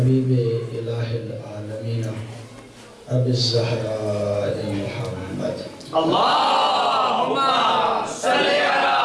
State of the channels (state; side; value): identical; both; correlation 1.00